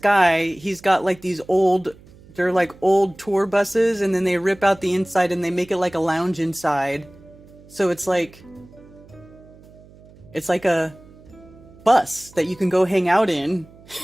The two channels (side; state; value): right; noise; hum, 24 dB below the sound